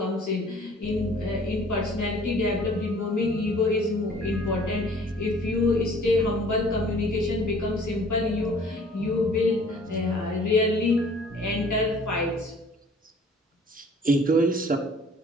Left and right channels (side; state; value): both; normal; correlation 0.53